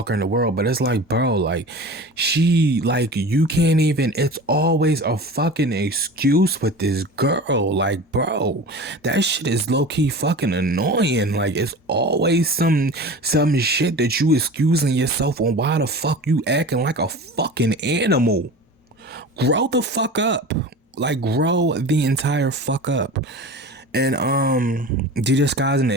in the world, but it's like, bro, like, she, like, you can't even, it's always a fucking excuse with this girl. Like, bro, that shit is low-key fucking annoying. Like, it's always some shit that you excusing yourself on. Why the fuck you acting like a fucking animal? Grow the fuck up. Like, grow the entire fuck up. And DJ Sky's an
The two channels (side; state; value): both; normal; correlation 0.35